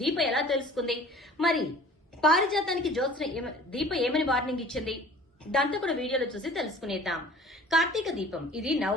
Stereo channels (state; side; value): normal; both; correlation 0.47